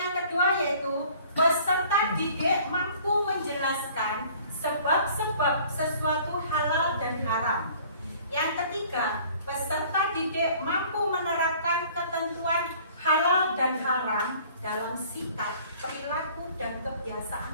kedua yaitu peserta didik mampu menjelaskan sebab-sebab sesuatu halal dan haram. Yang ketiga, peserta didik mampu menerapkan ketentuan halal dan haram dalam sikap, perilaku, dan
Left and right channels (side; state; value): both; inverted; correlation -0.52